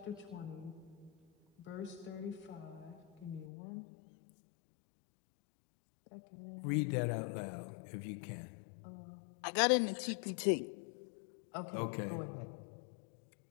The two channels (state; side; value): drops out; right; at 3.5 s